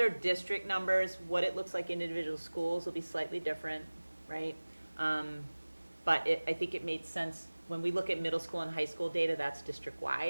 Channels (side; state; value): both; inverted; correlation -1.00